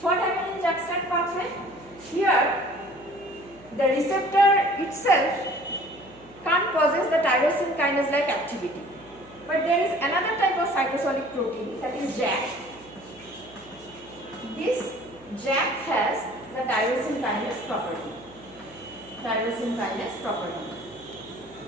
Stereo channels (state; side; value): noise; right; hum, 25 dB below the sound